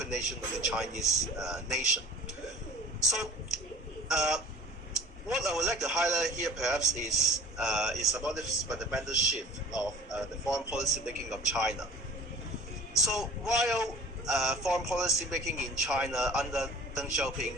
of the Chinese nation. So, what I would like to highlight here perhaps is about this fundamental shift of the foreign policy making of China. So, while foreign policy making in China under Deng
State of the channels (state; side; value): normal; both; correlation 0.47